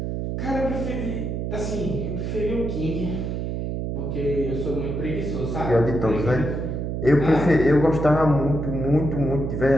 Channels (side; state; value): right; noise; hum, 3 dB below the sound